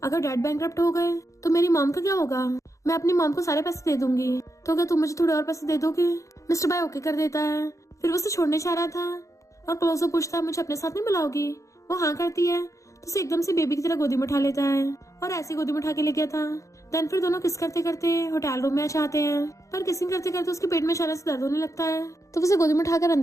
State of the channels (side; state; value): right; late; 0.15 ms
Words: अगर डैड बैंकरप्ट हो गए तो मेरी मॉम का क्या होगा। मैं अपनी मॉम को सारे पैसे दे दूंगी, तो क्या तुम मुझे थोड़े और पैसे दे दोगे। मिस्टर बाय ओके कर देता है। फिर वो उसे छोड़ने चाह रहा था और क्लोजो पूछता है मुझे अपने साथ नहीं बुलाओगी। वो हाँ करती है तो उसे एकदम से बेबी की तरह गोदी में उठा लेता है और ऐसे गोदी में उठा के ले गया था। देन फिर दोनों किस करते करते होटल रूम में आ जाते हैं, पर किसिंग करते करते उसके पेट में अचानक से दर्द होने लगता है। तो उसे गोदी में उठाकर